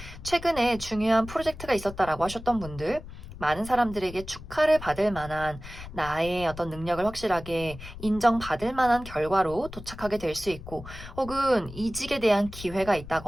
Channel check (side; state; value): left; noise; rumble, 13 dB below the sound